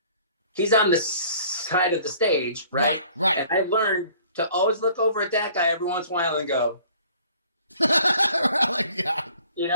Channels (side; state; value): both; inverted; correlation -0.54